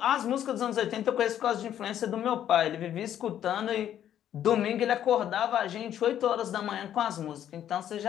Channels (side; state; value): right; quieter; 10.6 dB